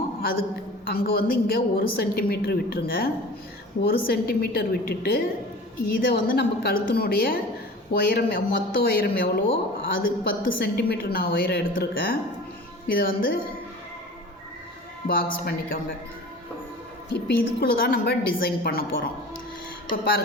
அதுக்கு அங்கே வந்து இங்கே 1 சென்டிமீட்டர் விட்டுருங்க. 1 சென்டிமீட்டர் விட்டுட்டு இதை வந்து நம்ம கழுத்தினுடைய உயரம், மொத்த உயரம் எவ்வளோ அது 10 சென்டிமீட்டர் நான் உயரம் எடுத்திருக்கேன். இதை வந்து பாக்ஸ் பண்ணிக்கோங்க. இப்போ இதுக்குள்ளே தான் நம்ம டிசைன் பண்ண போகிறோம். இப்போ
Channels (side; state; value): both; normal; correlation 0.40